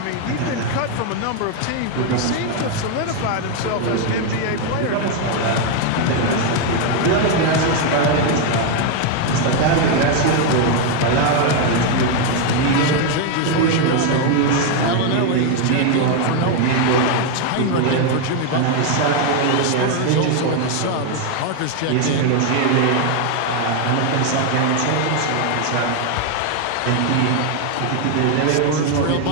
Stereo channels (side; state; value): both; different; correlation 0.01